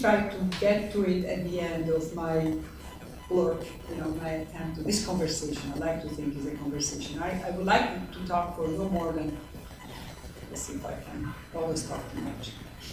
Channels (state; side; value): identical; both; correlation 1.00